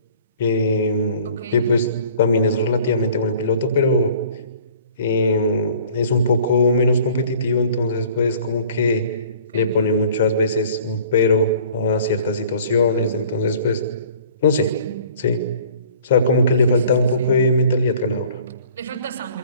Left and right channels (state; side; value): inverted; both; correlation -0.51